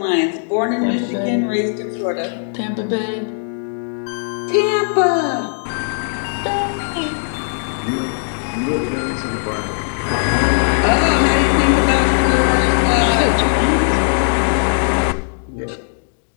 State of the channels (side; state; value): right; silent; digital silence